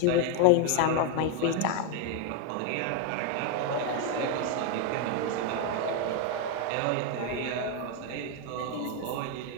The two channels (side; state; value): both; different; correlation 0.01